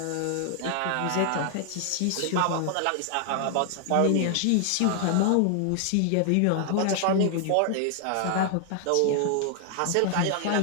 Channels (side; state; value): both; different; correlation 0.00